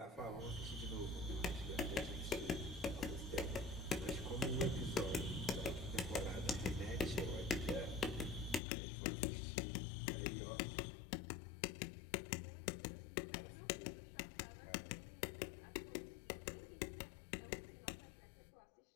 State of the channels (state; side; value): drops out; right; at 8.6 s